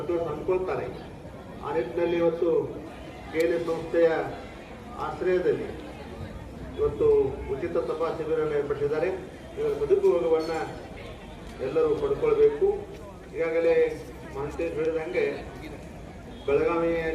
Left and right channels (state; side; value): identical; both; correlation 1.00